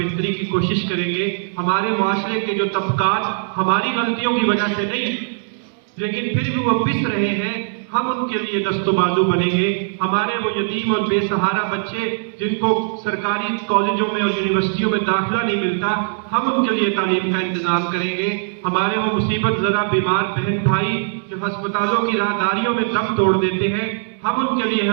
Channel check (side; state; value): left; silent; digital silence